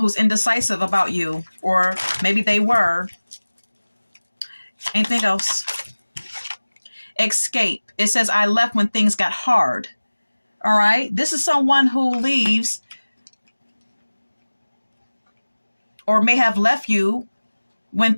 indecisive about you, or maybe they were. Anything else? Escape. It says, I left when things got hard. All right. This is someone who leaves or may have left you when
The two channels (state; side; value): inverted; both; correlation -1.00